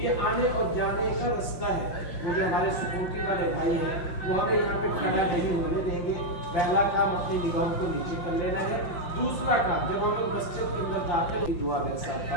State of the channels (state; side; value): late; right; 5.7 ms